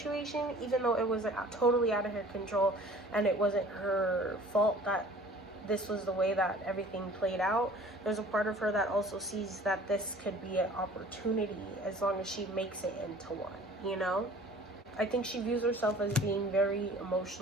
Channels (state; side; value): normal; both; correlation 0.48